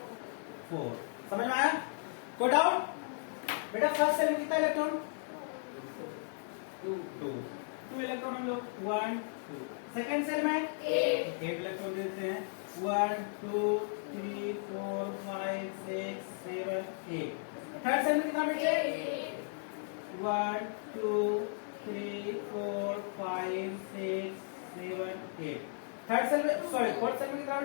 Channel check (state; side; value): silent; right; digital silence